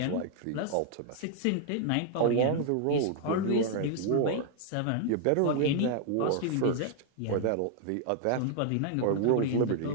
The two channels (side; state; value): both; different; correlation 0.00